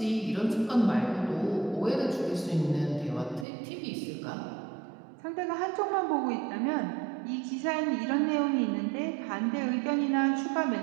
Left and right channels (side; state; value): left; drops out; at 3.5 s